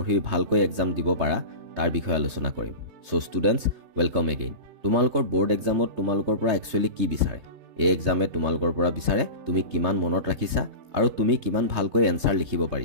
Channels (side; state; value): left; late; 3.7 ms